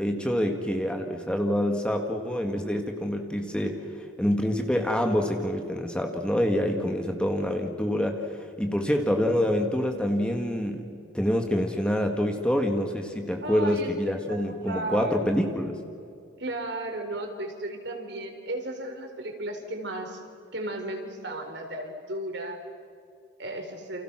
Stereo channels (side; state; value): both; normal; correlation 0.76